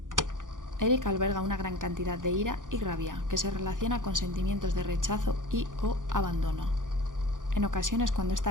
Eric alberga una gran cantidad de ira y rabia que se relaciona con sentimientos de rechazo y o abandono. En ocasiones, cuando esta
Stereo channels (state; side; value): late; left; 0.88 ms